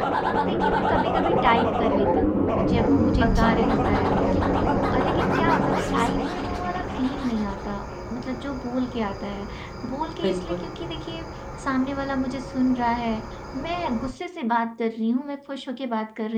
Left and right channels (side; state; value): both; identical; correlation 1.00